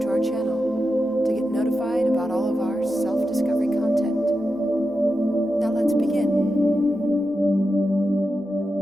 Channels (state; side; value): normal; both; correlation 0.89